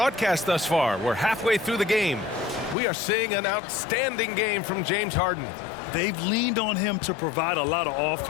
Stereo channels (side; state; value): right; drops out; at 2.8 s